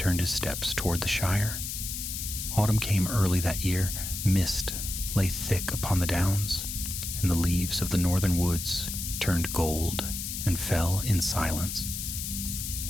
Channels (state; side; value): noise; left; hiss, 5 dB below the sound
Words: his steps toward the Shire. Autumn came early that year. Mist lay thick upon the downs, and the leaves of the northern woods turned gold and fell in silence.